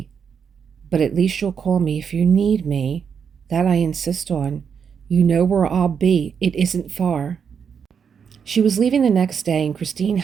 "But at least you'll call me if you need me. That I insist on. You know where I'll be. It isn't far." She was leaving the next day, and Christine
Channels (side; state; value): left; quieter; 6.9 dB